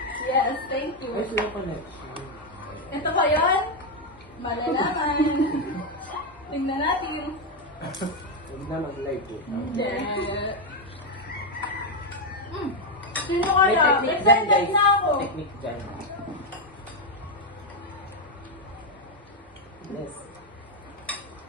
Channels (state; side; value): normal; both; correlation 0.03